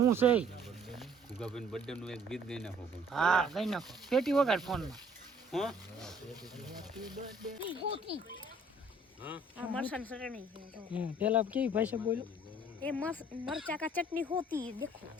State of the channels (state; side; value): normal; both; correlation 0.57